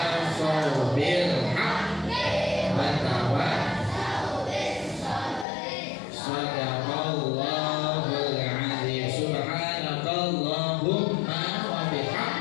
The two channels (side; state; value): right; drops out; at 5.5 s